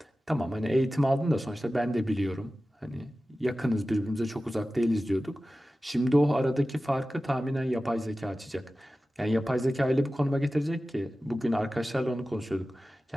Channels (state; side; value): normal; both; correlation 0.95